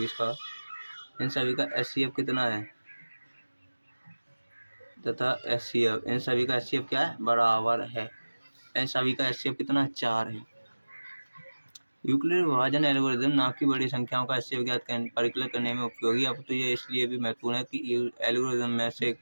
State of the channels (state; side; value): inverted; both; correlation -1.00